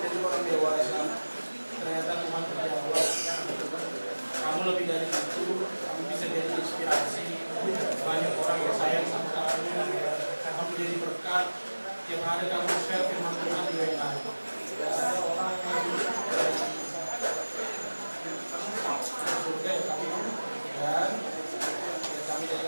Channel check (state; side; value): inverted; both; correlation -1.00